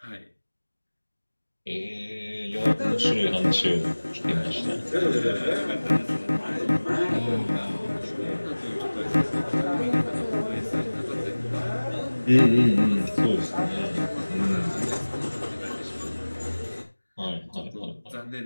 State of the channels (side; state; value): both; inverted; correlation -1.00